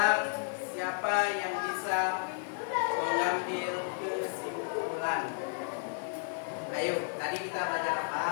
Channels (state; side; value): silent; right; 56 dB below the other